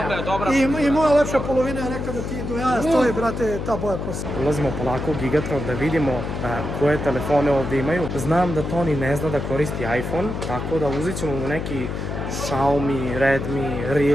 dobra. I moja lepša polovina je rekla da ti do jaja stoji, brate, ta boja kosa. Ulazimo polako u Gigatron da vidimo koje telefone ovdje imaju. Znam da Toni ne zna da koristi iPhone, tako da uzet ćemo mu neki Xiaomi, Redmi,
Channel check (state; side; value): noise; left; hum, 4 dB below the sound